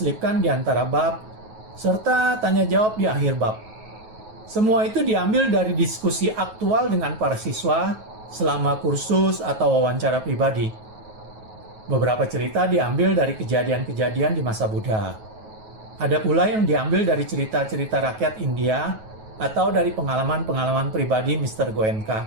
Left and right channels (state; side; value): late; left; 9.3 ms